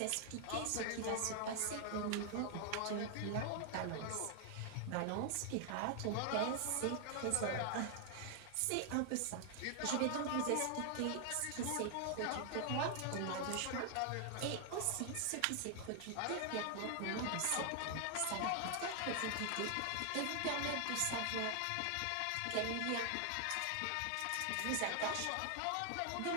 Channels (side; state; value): both; different; correlation 0.00